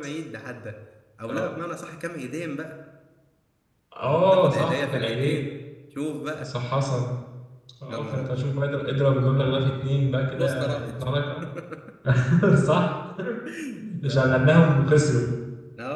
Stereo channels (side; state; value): both; identical; correlation 1.00